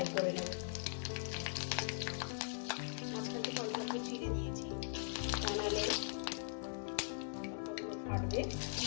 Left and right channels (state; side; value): silent; right; 50 dB below the other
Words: করে নেব। মাঝখান থেকে অল্প চিড়ে দিয়েছি, নাহলে লঙ্কাগুলো ফাটবে।